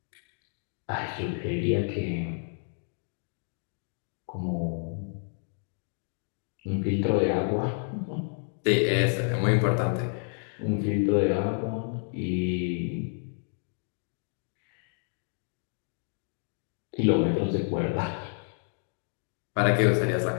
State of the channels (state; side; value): silent; right; 58 dB below the other